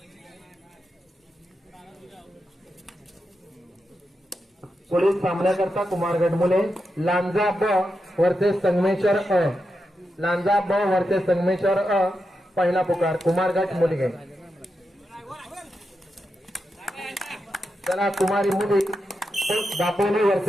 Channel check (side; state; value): both; normal; correlation 0.87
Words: पुढील सामन्याकरता कुमारगड मुले लांजा ब वर्सेस संगमेश्वर लांजा ब वर्सेस संगमेश्वर पहिला पुकार कुमारगड मुली. चला कुमारी मुली दापोली